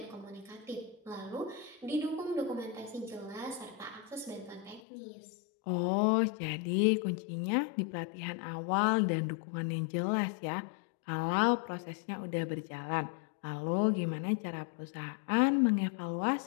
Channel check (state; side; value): drops out; right; at 4.8 s